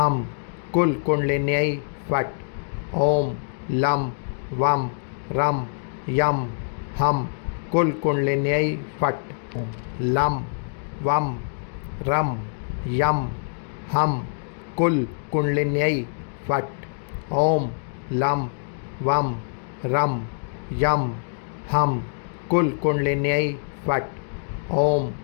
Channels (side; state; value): right; silent; digital silence